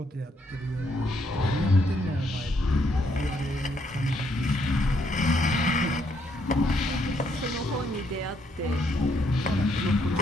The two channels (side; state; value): both; normal; correlation 0.73